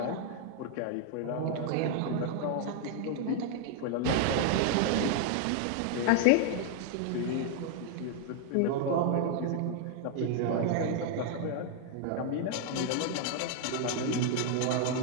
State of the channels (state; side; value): different; both; correlation 0.00